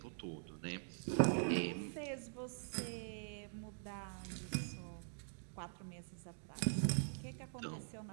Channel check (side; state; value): left; silent; digital silence